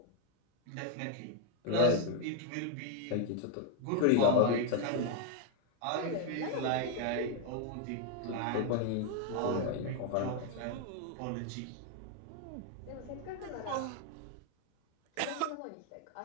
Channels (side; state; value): both; different; correlation 0.01